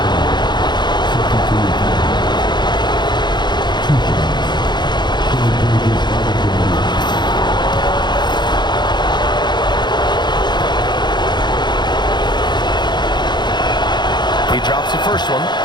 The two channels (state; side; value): late; right; 0.21 ms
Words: He drops the first one,